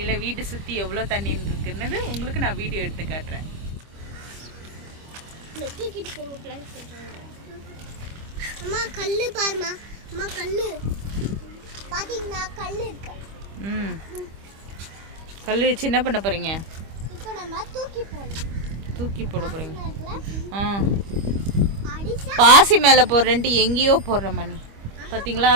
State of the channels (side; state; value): left; late; 25 ms